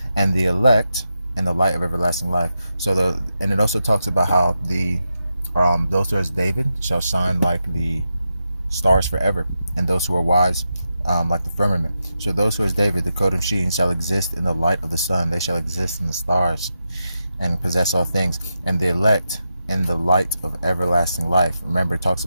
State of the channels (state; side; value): inverted; both; correlation -0.87